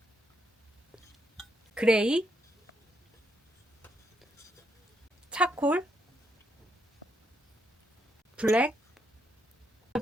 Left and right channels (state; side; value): normal; both; correlation 0.77